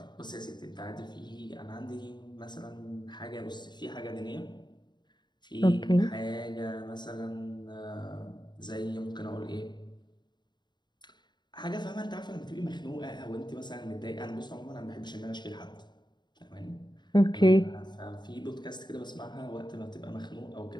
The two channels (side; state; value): right; late; 0.21 ms